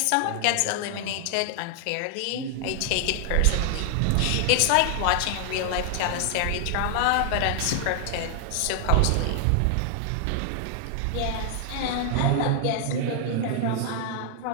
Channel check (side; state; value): both; different; correlation 0.00